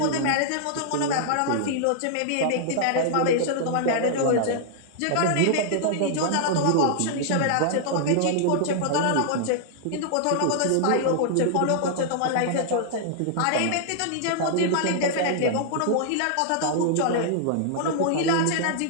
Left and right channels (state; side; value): different; both; correlation -0.01